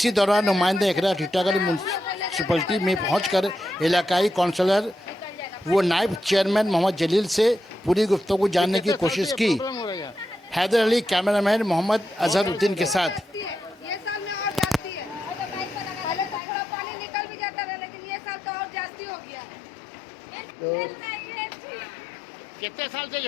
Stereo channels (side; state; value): right; drops out; at 16.4 s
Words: दौरान नुमाइंदा इकरा टीटागढ़ म्यूनसिपलिटी में पहुंचकर इलाकाई काउंसलर वो नायब चेयरमैन मोहम्मद जलील से पूरी गुफ्तगू जानने की कोशिश की। हैदर अली कैमरामैन मोहम्मद अजहरुद्दीन के साथ। कितने साल से